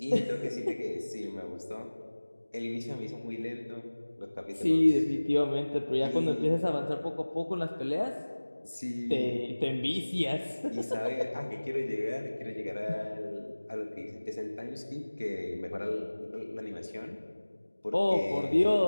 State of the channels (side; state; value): both; inverted; correlation -1.00